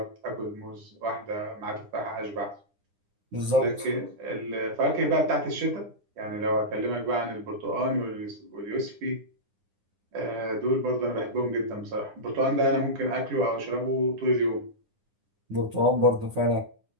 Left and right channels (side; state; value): left; late; 9.8 ms